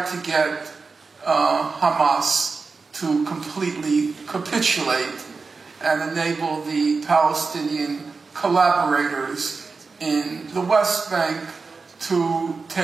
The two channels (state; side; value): quieter; left; 4.4 dB